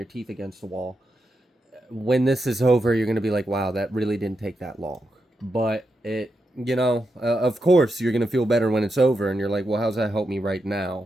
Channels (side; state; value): both; normal; correlation 0.86